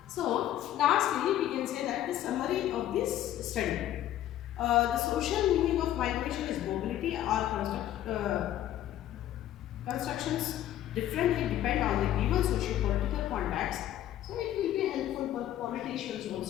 So, lastly, we can say that the summary of this study. The social meaning of migration is mobility or constructions differently depend on the given socio-political context. So, it will be helpful for politicians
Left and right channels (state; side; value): quieter; right; 12.4 dB